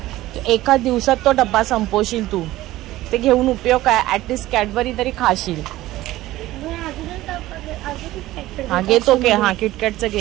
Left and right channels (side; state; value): left; quieter; 16.4 dB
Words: एका दिवसात तो डब्बा संपवशील तू. ते घेऊन उपयोग काय? ऍटलिस्ट कॅडबरी तरी खाशील. हा घेतो घे. हा किटकॅटचं